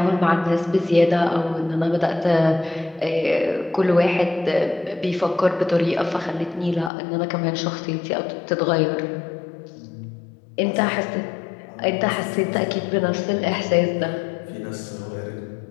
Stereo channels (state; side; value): drops out; right; at 6.9 s